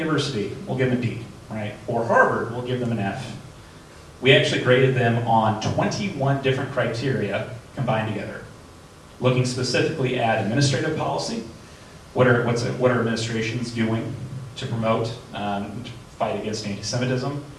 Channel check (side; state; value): both; identical; correlation 1.00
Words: we'll give them a D, right? Or Harvard, we'll give them an F. We actually graded them on 21 different criteria combined together, looking specifically at administrative policy, what are administrations doing to promote, fight against anti-Semitism,